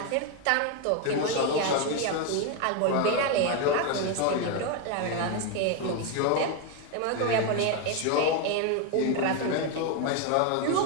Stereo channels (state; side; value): different; both; correlation 0.01